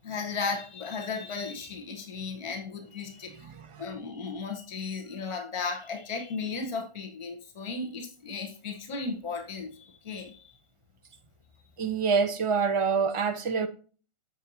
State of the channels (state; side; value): late; left; 1.4 ms